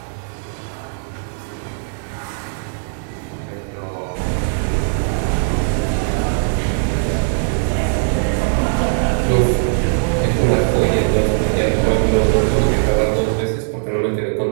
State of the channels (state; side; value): silent; left; 64 dB below the other